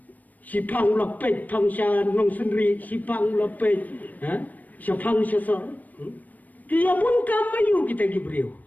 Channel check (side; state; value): right; late; 0.081 ms